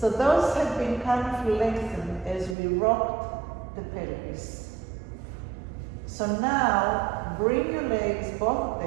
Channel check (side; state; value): left; drops out; at 2.6 s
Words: those have been kind of lengthened as we rocked the pelvis. So now, bring your legs, both of